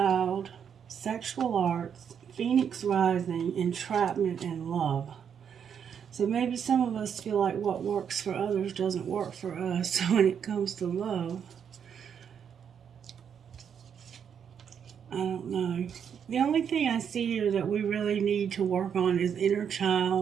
sexual arts, Phoenix rising, entrapment, and love. So maybe some of us feel like what works for others doesn't work for us when it comes to love. I don't know. The only thing I see here that we really need to work on is inner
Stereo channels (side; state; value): left; quieter; 7.8 dB